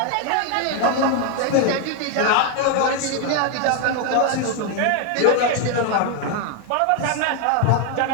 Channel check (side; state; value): both; different; correlation 0.01